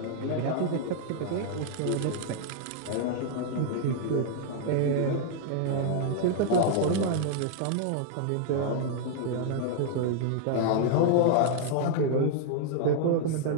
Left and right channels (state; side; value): different; both; correlation -0.01